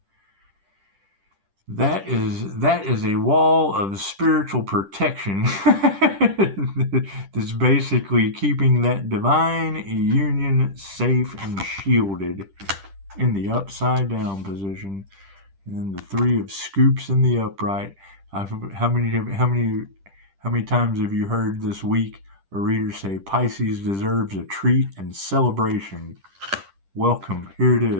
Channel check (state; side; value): late; left; 10 ms